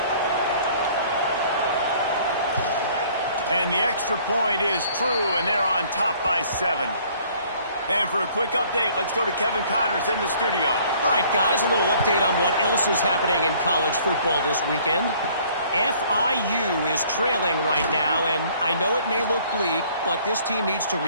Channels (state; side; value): inverted; both; correlation -0.57